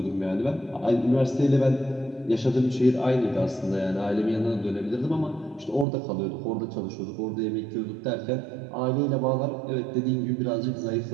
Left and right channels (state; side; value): drops out; left; at 5.9 s